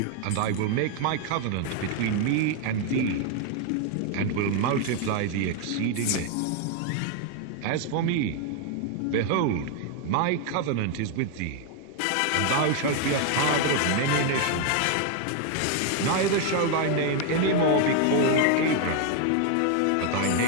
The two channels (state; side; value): different; both; correlation 0.01